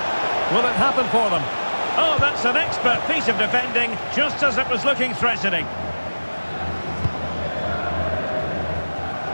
Will it happen for them? Oh, that's an expert piece of defending, just as it was looking threatening.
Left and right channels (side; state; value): both; inverted; correlation -1.00